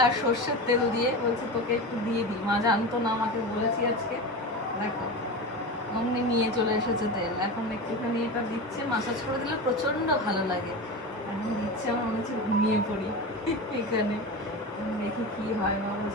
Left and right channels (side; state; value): both; normal; correlation 0.25